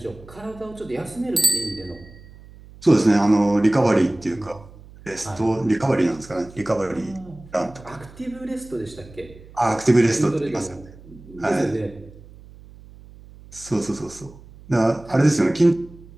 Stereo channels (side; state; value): right; noise; hum, 21 dB below the sound